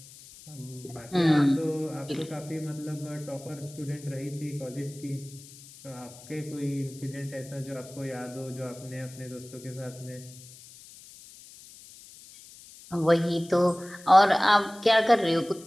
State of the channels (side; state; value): left; noise; hiss, 19 dB below the sound